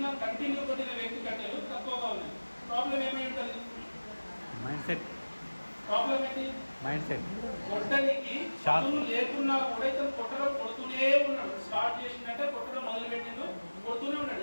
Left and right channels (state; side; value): inverted; both; correlation -1.00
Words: కంటిన్యూ కొట్టిన వ్యక్తి కట్టెలు తక్కువగా ఉన్నాయి. ప్రాబ్లం ఏమై ఉంటుంది? Mind set. ప్రాబ్లం ఏంటి? Mind set. కొట్టడానికి చదువు లేకున్నా కూడా ఇతను కొడుతూనే ఉన్నాడు. స్టార్ట్ చేసిందంటే కొట్టడం మొదలుపెట్టిండు, కొడుతూనే